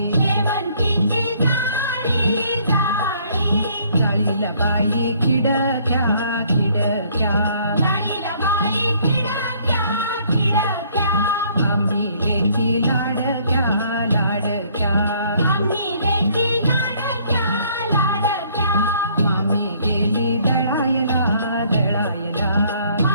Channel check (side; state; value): both; inverted; correlation -0.62